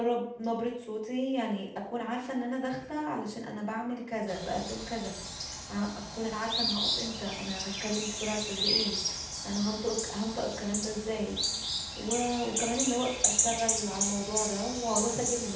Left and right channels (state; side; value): identical; both; correlation 1.00